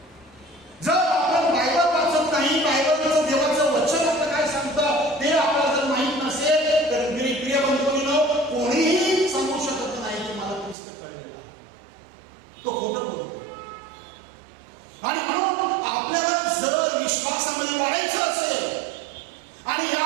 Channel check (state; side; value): drops out; left; at 10.8 s